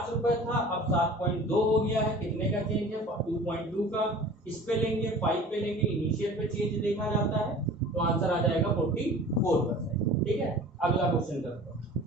रुपए था, अब 7.2 हो गया है, कितने का चेंज है 2.2 का। इस पे लेंगे 5 पे लेंगे, इनिशियल पे चेंज देखा जाता है, तो आंसर आ जाएगा 44%। ठीक है, अगला क्वेश्चन करते हैं।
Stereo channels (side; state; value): both; normal; correlation 0.43